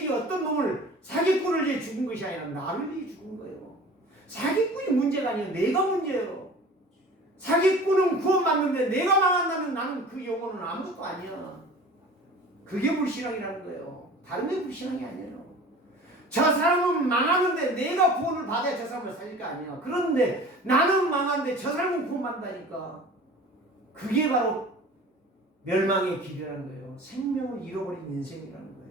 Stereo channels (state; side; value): normal; both; correlation 0.42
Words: 어떤 놈을, 사기꾼을 위해 죽은 것이 아니라 나를 위해 죽은 거예요. 사기꾼이 문제가 아니에요. 내가 문제예요. 사기꾼은 구원받는데 내가 망한다면 나는 그 영혼은 아무것도 아니야. 그게 불신앙이라는 거예요. 다른 게 불신앙이 아니에요. 저 사람은 망하는데 내가 구원을 받아야 저 사람을 살릴 거 아니야. 그런데 나는 망하는데 저 사람은 구원받는다니까. 그게 바로 멸망의 길이라는 거예요. 생명을 잃어버린 인생이라는 거예요.